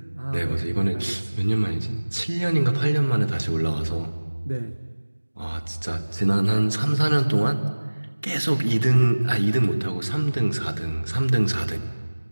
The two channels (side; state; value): both; inverted; correlation -1.00